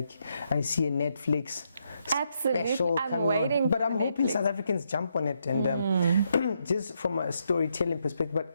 I see a Netflix. Absolutely, I'm waiting on. But I'm hoping South Africans jump on it, and just from a storytelling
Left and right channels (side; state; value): both; inverted; correlation -0.78